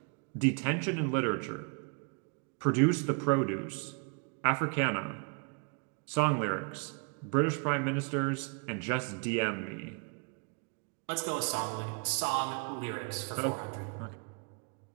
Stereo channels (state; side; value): quieter; left; 37.5 dB